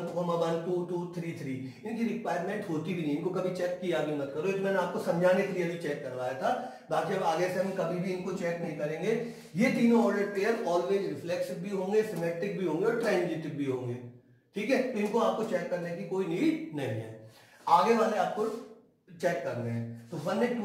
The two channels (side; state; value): both; identical; correlation 1.00